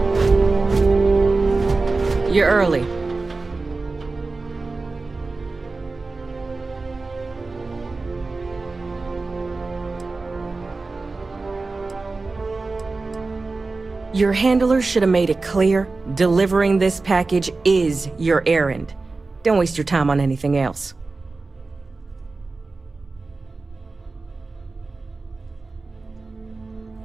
You're early. Your handler should have made it clear, delivering this package is your errand. Don't waste your time on anything else.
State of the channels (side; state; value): left; quieter; 3.7 dB